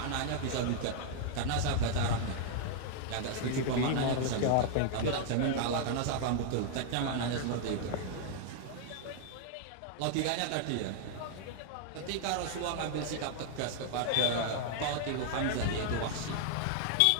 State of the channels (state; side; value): different; both; correlation 0.00